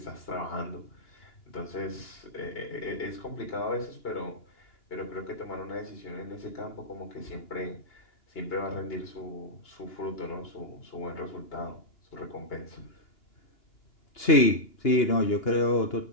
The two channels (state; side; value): late; right; 2.9 ms